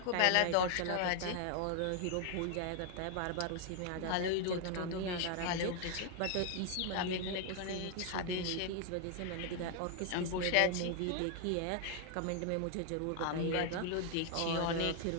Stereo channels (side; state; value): both; different; correlation 0.00